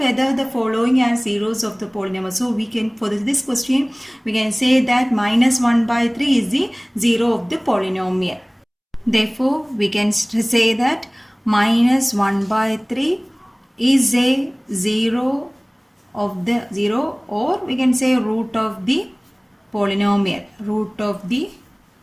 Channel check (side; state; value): both; identical; correlation 1.00